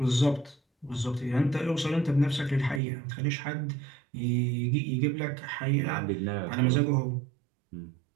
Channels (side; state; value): left; drops out; at 2.8 s